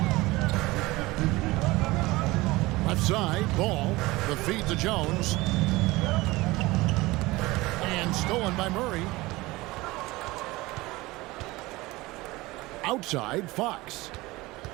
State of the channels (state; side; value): quieter; left; 20.7 dB